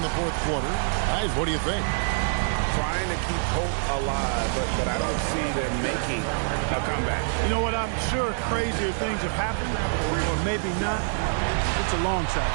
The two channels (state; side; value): silent; left; 61 dB below the other